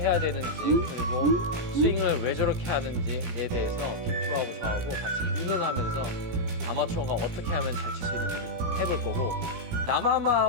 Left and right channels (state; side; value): late; left; 17 ms